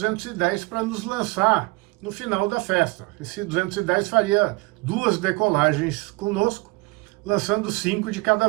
para nos lançar no final da festa. Esse 210 faria 2 decolagens conosco, lançando 5 de cada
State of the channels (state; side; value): quieter; left; 24.4 dB